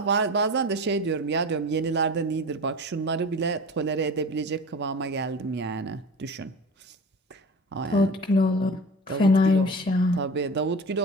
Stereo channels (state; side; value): normal; both; correlation 0.35